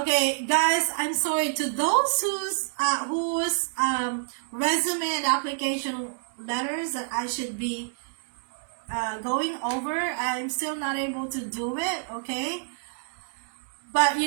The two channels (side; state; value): left; silent; digital silence